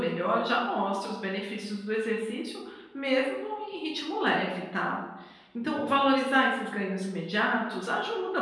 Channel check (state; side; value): identical; both; correlation 1.00